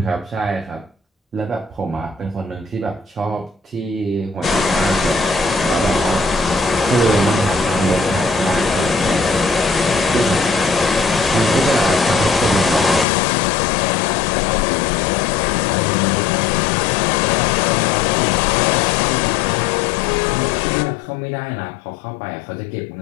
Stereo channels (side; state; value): right; drops out; at 13.1 s